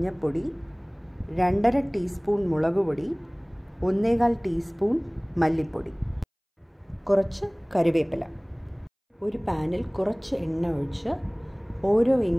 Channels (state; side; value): identical; both; correlation 1.00